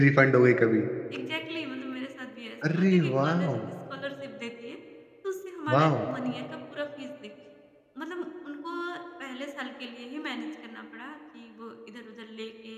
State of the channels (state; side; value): identical; both; correlation 1.00